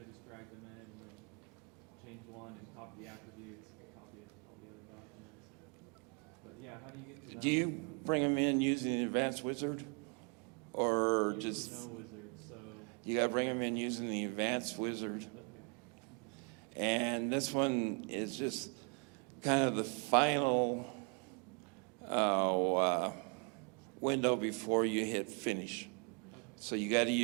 I just drag them in and then change one and copy the attributes and copy all the other documents. But yeah, how do you get to that? Do you window? bring them in using the advanced wizard? Or Usually just, no wizard, so, you gotta bring them in using the advanced wizard? okay. And this one is just kind of the final window before you hit finish. So you got to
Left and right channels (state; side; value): quieter; left; 38.3 dB